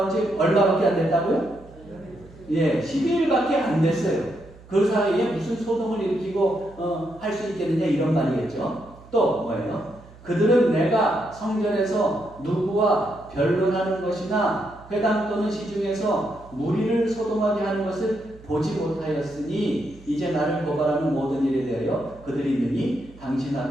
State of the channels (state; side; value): noise; right; hum, 22 dB below the sound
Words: 지 얼마밖에 안 됐다고요? 예, 12일밖에 안 됐어요. 그 사이에 무슨 소동을 일으키고 할 수 있겠느냐 이런 말이겠죠. 또 뭐예요? 그들은 내가 성전에서 누구와 변론하는 것이나 회당 또는 시중에서 무리를 소동하게 하는 것을 보지 못하였으니 이제 나를 고발하는 모든 일에 대하여 그들이 능히 당신